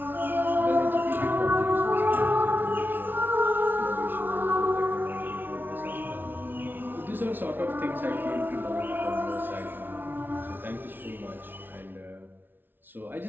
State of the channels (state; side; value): late; left; 0.097 ms